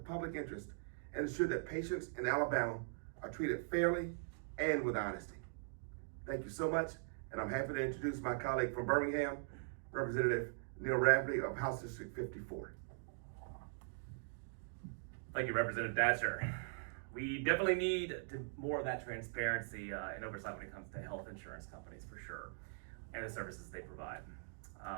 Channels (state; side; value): silent; left; digital silence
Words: interest and ensure that patients in Alabama are treated fairly and with honesty. Thank you so much, and I'm happy to introduce my colleague from Birmingham, Representative Neil Rafferty of House District 54. Thank you, Representative Datcher. We definitely need more of that transparency and oversight when it comes to health insurance companies, for sure, and the services they provide.